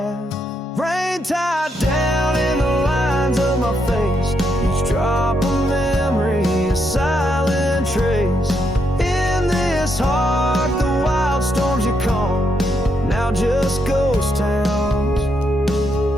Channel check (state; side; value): normal; both; correlation 0.79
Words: Rain tied down in the lines of my face, each drop of memory a silent trace. In this heart the wild storms you calm, now just ghost towns,